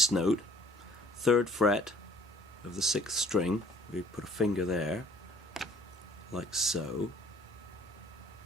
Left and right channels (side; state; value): both; normal; correlation 0.56